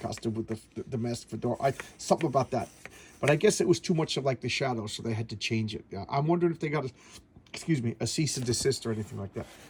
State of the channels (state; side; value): identical; both; correlation 1.00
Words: with the mask fedora. Something about that. But I guess it was too much of like the shadow, so they had to change it. Yeah, I'm wondering if they got a cease and desist or anything like that.